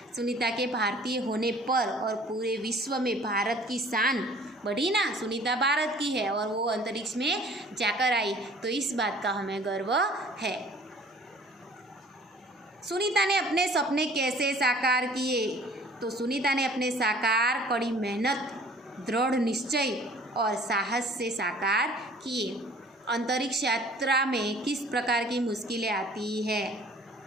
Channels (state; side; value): normal; both; correlation 0.51